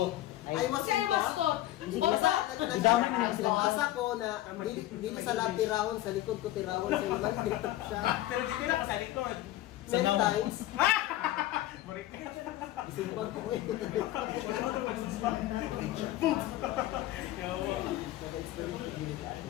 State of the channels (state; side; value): quieter; right; 15.2 dB